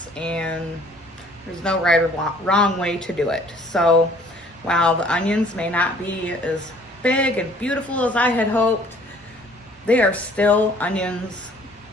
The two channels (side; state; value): both; normal; correlation 0.56